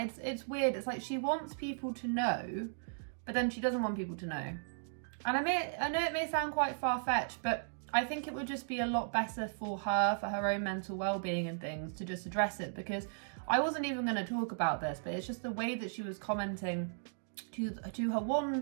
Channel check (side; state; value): left; silent; digital silence